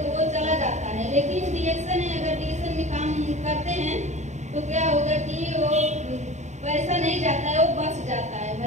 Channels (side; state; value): left; late; 0.34 ms